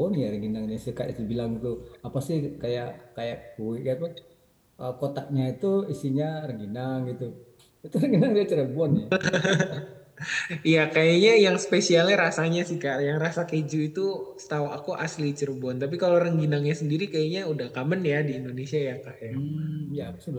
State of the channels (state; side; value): identical; both; correlation 1.00